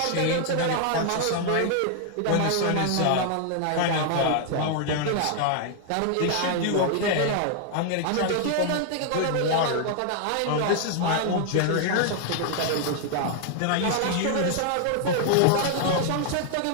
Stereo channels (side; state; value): both; different; correlation 0.00